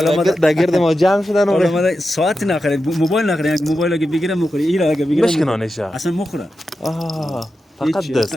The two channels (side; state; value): both; normal; correlation 0.90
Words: در گرد ما جمع شدن. حالا ما ساعت نخرید، موبایل نخرید، اگه موبایل اگه بگیرم میخوره، اینا اگه بگیرم بشکنانشه اصلا میخوره. فقط